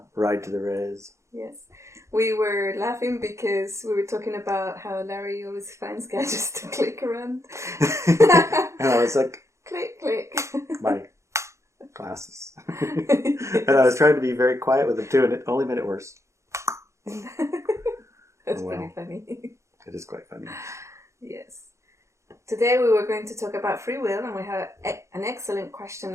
ride to the Res. Yes. We were laughing because we were talking about how Larry always finds gadgets to click around. And I was like, click, click. My glasses. And I was trying to be very quiet with them too, and it only made it worse. That's well, pretty funny. It is quite funny. Yes. Today we were going to talk about free will, and we had an excellent question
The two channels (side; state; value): left; late; 0.14 ms